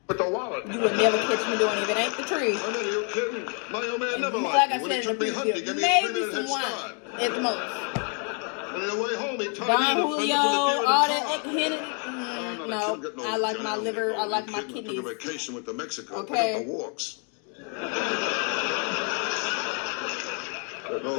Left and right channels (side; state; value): right; quieter; 39.5 dB